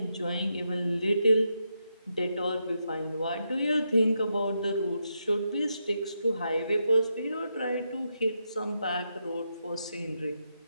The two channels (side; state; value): both; inverted; correlation -0.83